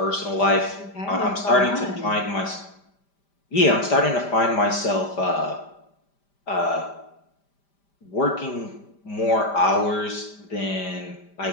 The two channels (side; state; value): right; late; 5.0 ms